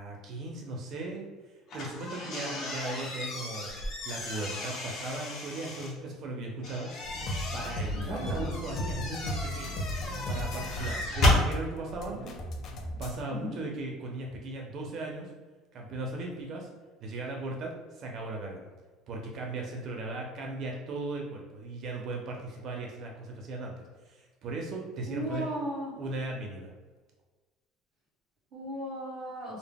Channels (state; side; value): normal; both; correlation 0.46